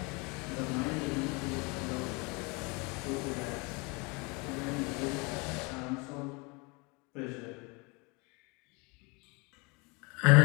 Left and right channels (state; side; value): quieter; right; 28.9 dB